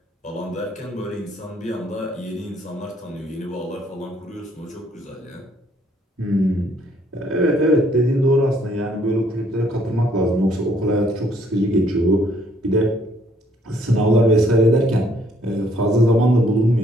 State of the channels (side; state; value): both; normal; correlation 0.65